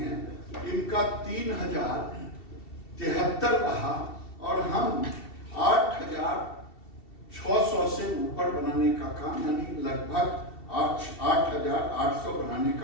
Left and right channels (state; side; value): late; right; 2.7 ms